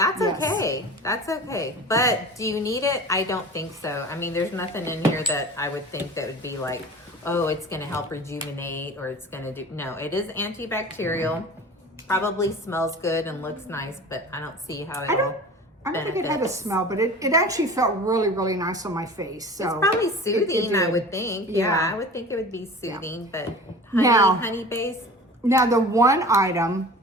okay. That's okay. But do you need it? I don't think so. I mean, there's nothing in here that I would think that would be like, oh, it's going to help rejuvenate or it's going to do. No, it is antibacterial. Probably smells good and looks nice, but I don't see how it'll I don't think it had a smell, but it actually felt really, really nice on my face. So it's probably soothing, I would think. Yeah, I would think it would be soothing, but honey base. Now, the one item,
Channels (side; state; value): both; normal; correlation 0.38